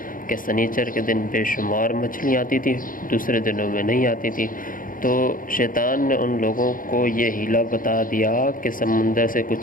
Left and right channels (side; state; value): right; late; 0.40 ms